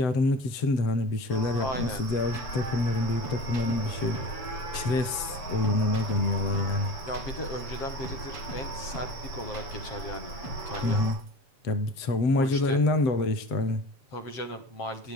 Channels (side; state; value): right; late; 7.8 ms